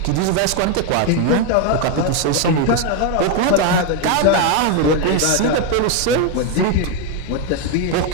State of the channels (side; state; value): both; different; correlation 0.02